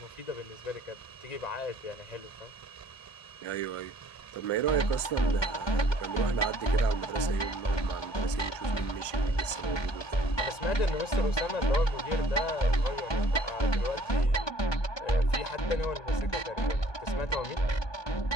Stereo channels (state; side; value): late; right; 1.2 ms